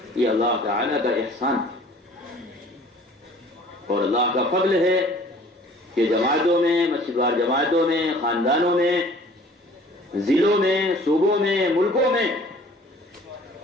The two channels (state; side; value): normal; both; correlation 0.51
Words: یہ اللہ تعالی کا احسان اور اللہ کا فضل ہے کہ جماعتوں میں, مسجد وار جماعتوں میں, خاندانوں میں, ضلعوں میں, صوبوں میں, ملکوں میں